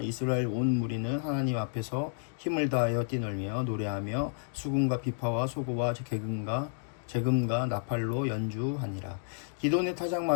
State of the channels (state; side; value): silent; right; digital silence